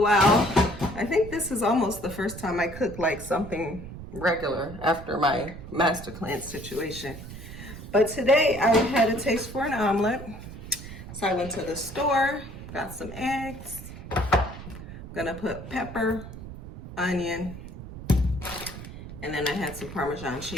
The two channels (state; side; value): noise; right; rumble, 12 dB below the sound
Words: I think this is almost the first time I cook like something regular after my master cleanse situation. But today I had a taste for an omelet. So I went to the store, got some eggs. I'm gonna put pepper, onion, and then I had some Parmesan